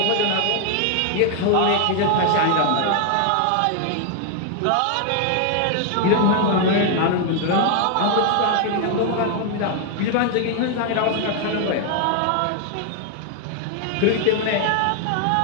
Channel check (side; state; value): both; different; correlation 0.00